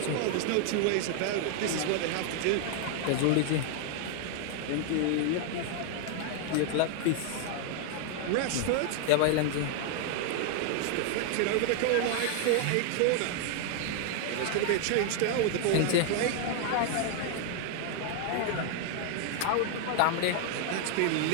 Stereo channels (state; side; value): different; both; correlation 0.00